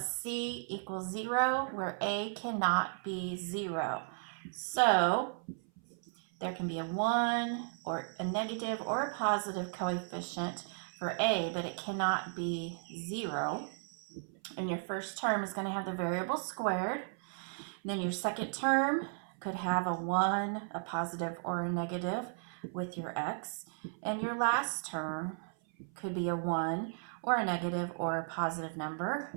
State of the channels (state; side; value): silent; left; 54 dB below the other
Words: c equals 0, where a cannot be 0. So there can be a 1 or a negative or a positive coefficient for a, but it cannot be 0. And your first term is going to have the variable squared. And then your second term could have a 1, a positive, or a negative with your x. And your last term could be a 1 or a negative or a positive number.